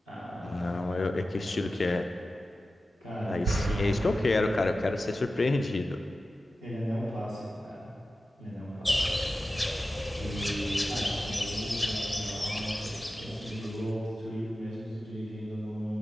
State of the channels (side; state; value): both; normal; correlation 0.94